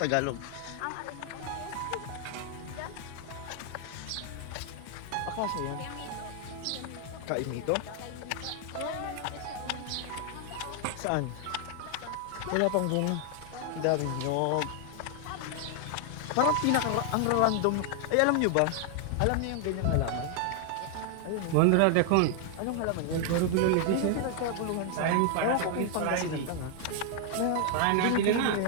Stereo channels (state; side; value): different; both; correlation 0.00